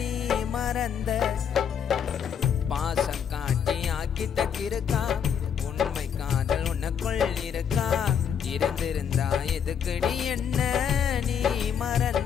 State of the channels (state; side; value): quieter; right; 7.8 dB